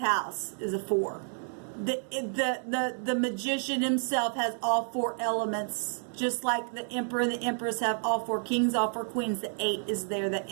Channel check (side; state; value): left; silent; 58 dB below the other